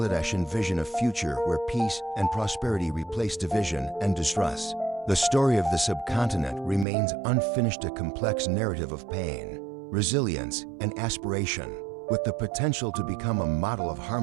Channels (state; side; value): drops out; left; at 6.9 s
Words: envision a future where peace and prosperity replace division and distrust. The story of the subcontinent remains unfinished, a complex narrative of pain, resilience, and aspiration, with the potential to become a model of